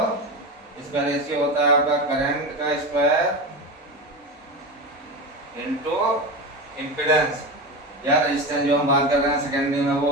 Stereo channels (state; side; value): normal; both; correlation 0.22